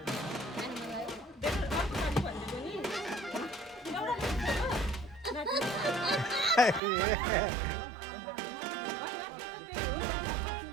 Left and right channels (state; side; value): drops out; left; at 6.8 s